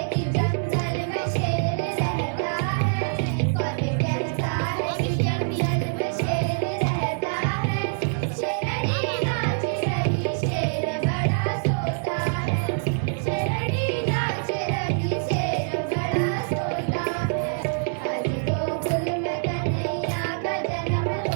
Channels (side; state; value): left; silent; 57 dB below the other